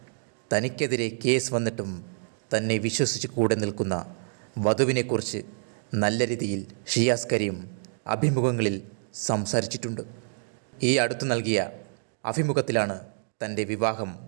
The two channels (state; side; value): silent; left; digital silence